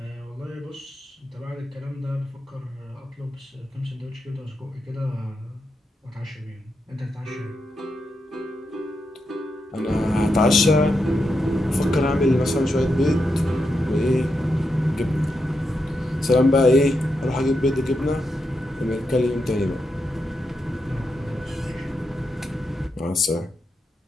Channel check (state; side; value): normal; both; correlation 0.85